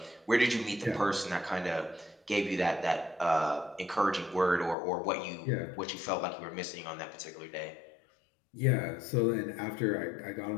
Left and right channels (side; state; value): right; drops out; at 4.8 s